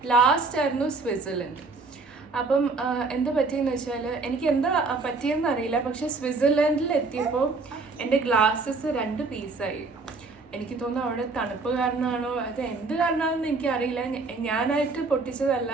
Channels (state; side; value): quieter; left; 3.9 dB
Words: ലാസ്റ്റ് ആയിരുന്നു സ്വിറ്റ്സർലൻഡ്. അപ്പം എന്താ പറ്റിയെന്ന് വെച്ചാൽ എനിക്ക് എന്താ പറ്റിയെന്ന് അറിയില്ല. പക്ഷെ സ്വിറ്റ്സർലൻഡിൽ എത്തിയപ്പോൾ എൻ്റെ ഗ്ലാസ്സസ് 2 പീസായി. എനിക്ക് തോന്നുന്നു അവിടെ തണുപ്പ് കാരണമാണോ അത് എന്ത് കാരണമാണെന്ന് എനിക്കറിയില്ല. ഞാനായിട്ട് പൊട്ടിച്ചതല്ല,